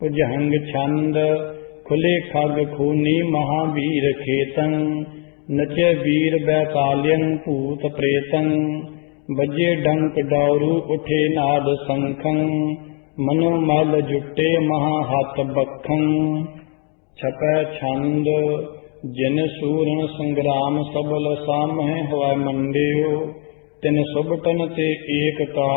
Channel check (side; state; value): right; quieter; 38.3 dB